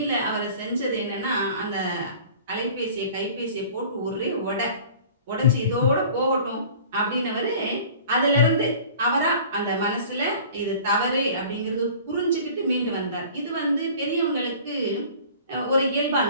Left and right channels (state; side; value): inverted; both; correlation -0.45